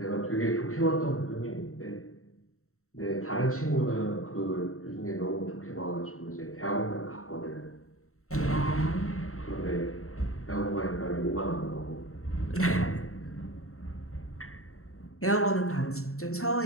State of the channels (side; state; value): right; late; 0.63 ms